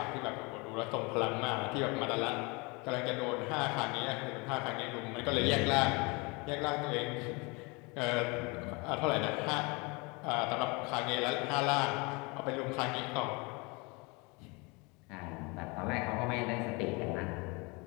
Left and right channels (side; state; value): right; quieter; 28.0 dB